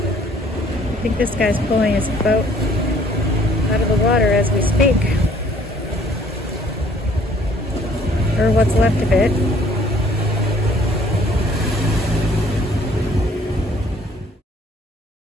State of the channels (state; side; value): normal; both; correlation 0.59